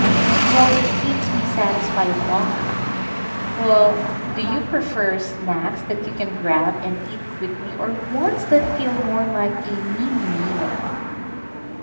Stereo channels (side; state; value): both; inverted; correlation -1.00